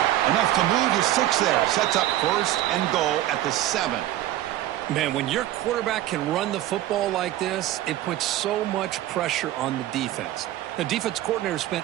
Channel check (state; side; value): quieter; left; 14.1 dB